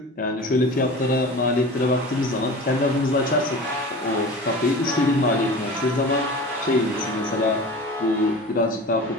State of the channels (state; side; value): normal; both; correlation 0.36